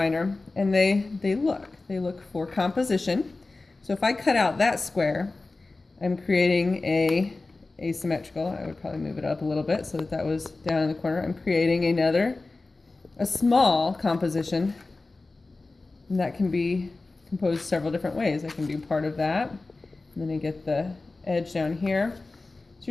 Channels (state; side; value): quieter; right; 3.4 dB